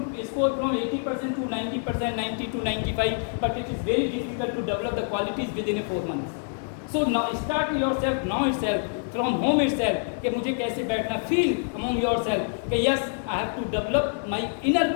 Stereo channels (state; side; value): silent; right; digital silence